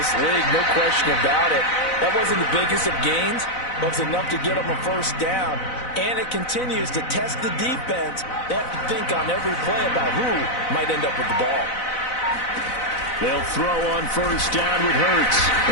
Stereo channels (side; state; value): right; late; 4.0 ms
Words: league, no question about it. That wasn't the biggest of gains, but it's enough to get them a first down. And it continues to test the defense. They have to think on every play about who might end up with the ball. They'll throw on first down with Hurts.